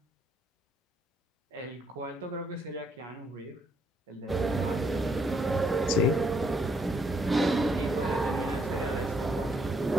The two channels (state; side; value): normal; both; correlation 0.71